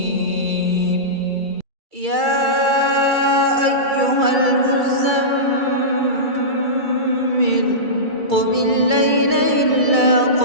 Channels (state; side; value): late; left; 2.3 ms